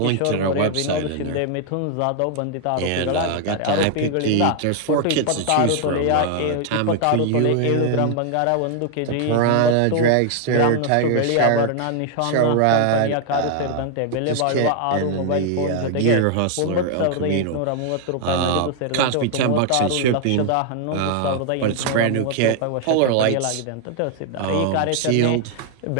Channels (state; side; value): different; both; correlation 0.00